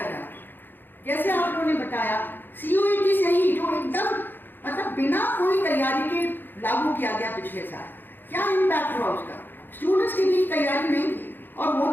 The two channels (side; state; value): right; late; 0.094 ms